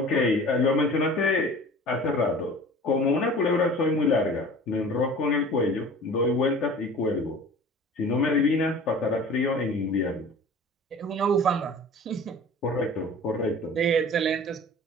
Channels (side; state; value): both; normal; correlation 0.42